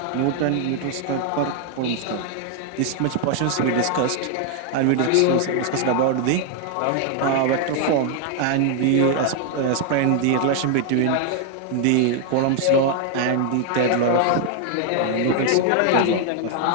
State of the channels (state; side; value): different; both; correlation 0.00